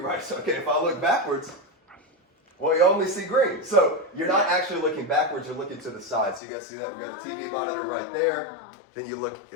So, okay, if I look backwards, well, you only see green. So you're not actually looking backwards, you're looking to the side. So you guys see that? We've got a TV monitor right there. Then you look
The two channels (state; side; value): drops out; right; at 6.4 s